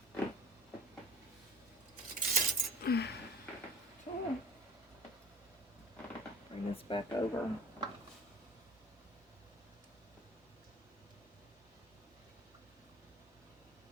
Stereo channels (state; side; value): normal; both; correlation 0.43